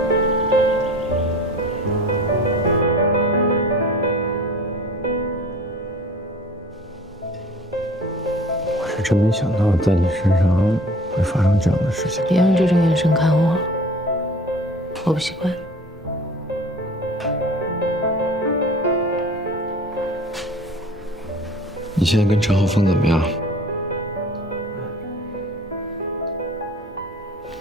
我是真没想到在你身上会发生这样的事情。别用这种眼神看我，我不习惯。你现在跟陈浩峰怎么样？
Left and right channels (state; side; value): normal; both; correlation 0.44